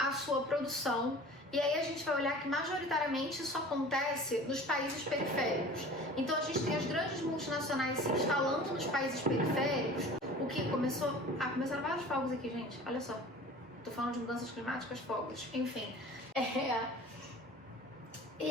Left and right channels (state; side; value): normal; both; correlation 0.42